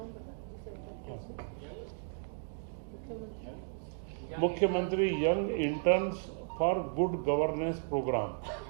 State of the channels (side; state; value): left; silent; digital silence